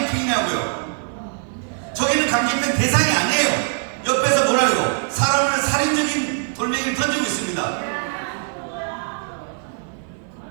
저기는 강제집행 대상이 아니에요. 옆에서 뭐라고요? 사람을 살인적인 돌멩이를 던지고 있습니다.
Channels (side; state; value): left; silent; 57 dB below the other